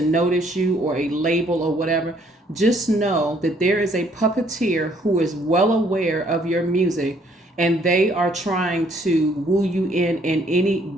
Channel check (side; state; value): both; normal; correlation 0.65